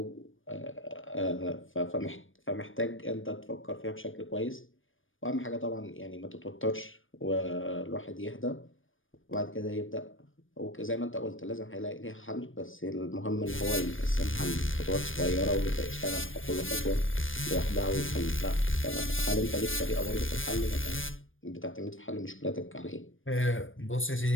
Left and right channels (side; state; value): right; late; 0.58 ms